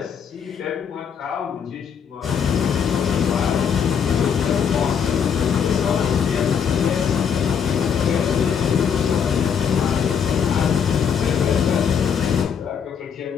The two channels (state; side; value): quieter; right; 7.3 dB